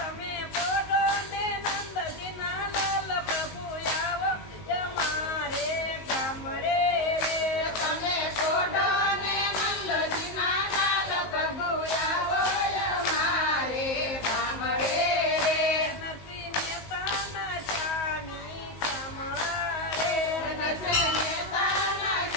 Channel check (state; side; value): late; right; 19 ms